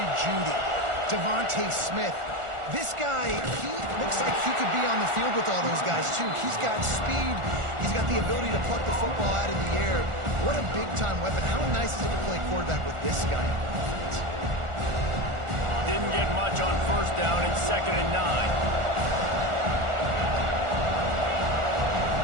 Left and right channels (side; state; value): left; late; 1.4 ms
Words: Jeudy, Devontae Smith, this guy, he looks like he could be on the field with all those guys, too. He's got speed. He's got the ability to pluck the football out of the air. What a big-time weapon. How nice is it to play quarterback with this guy on offense? Didn't get much on first down in 2nd and 9.